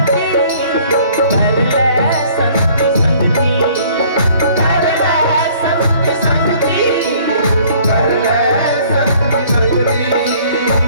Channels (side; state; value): both; inverted; correlation -0.56